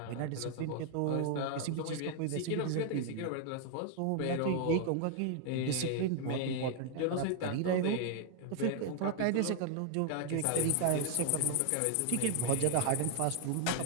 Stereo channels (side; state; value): both; different; correlation 0.00